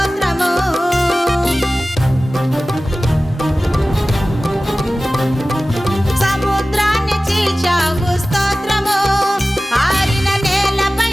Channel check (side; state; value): both; normal; correlation 0.96